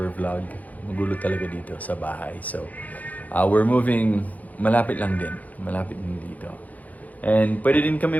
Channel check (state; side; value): late; right; 0.077 ms